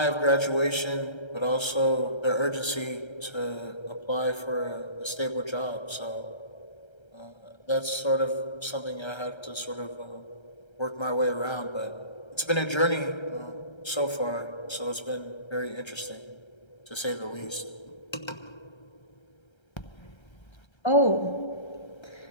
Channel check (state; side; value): late; right; 1.3 ms